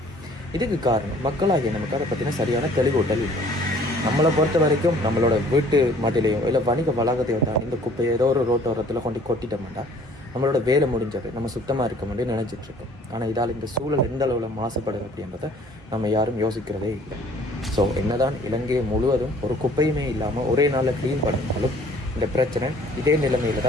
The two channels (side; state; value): both; normal; correlation 0.55